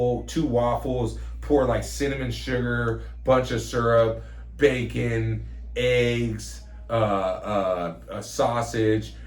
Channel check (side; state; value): both; identical; correlation 1.00